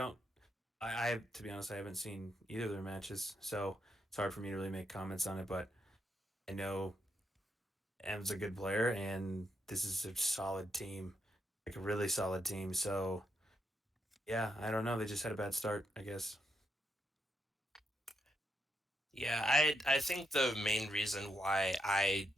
be honest, I haven't seen either of their matches, so it's hard for me to really make comments on it. But I know M's a good player, and this is a solid team, like a really solid team. So yeah, I don't know. They just had a bad start, I guess. Yeah, I think the main reason why I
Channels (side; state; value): both; normal; correlation 0.80